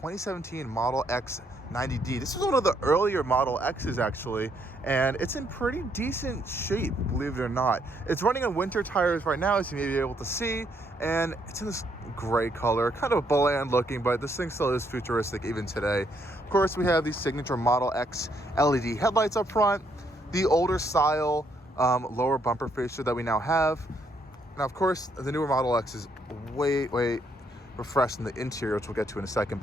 Model X 90D. This is one of the earlier Model X's actually, and it's in pretty decent shape, believe it or not. It's running on winter tires right now, as you may be able to see, and it's in this gray color, kind of bland looking, but this thing still is futuristic even today. Of course, we have the signature Model X LED headlights up front, the older style lower bumper fascia that we now have. Now, of course, the newer Model X is way refreshed in the interior, which we'll get to in a second,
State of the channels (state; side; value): normal; both; correlation 0.72